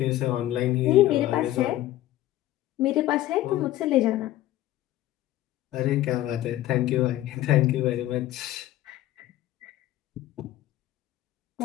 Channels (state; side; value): quieter; right; 14.8 dB